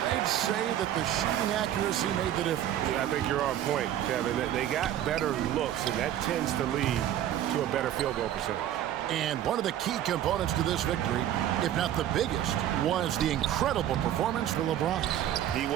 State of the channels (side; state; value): left; quieter; 11.6 dB